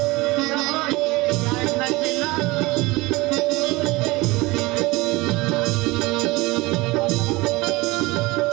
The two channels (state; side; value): quieter; left; 22.1 dB